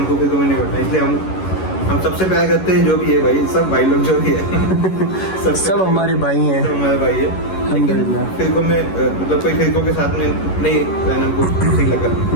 फिरकों में नहीं बढ़ना। इसलिए हम सबसे प्यार करते हैं, जो भी है भाई, सब भाई लोग जो भी है सब हमारे भाई हैं, सब हमारे भाई है। लेकिन फिरकों में मतलब कोई फिरकों के साथ में नहीं रहना हमको सही लगा।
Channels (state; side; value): late; right; 11 ms